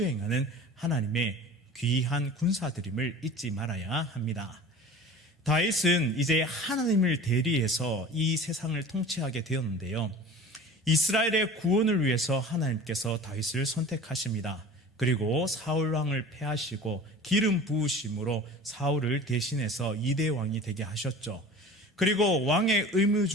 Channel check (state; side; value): normal; both; correlation 0.39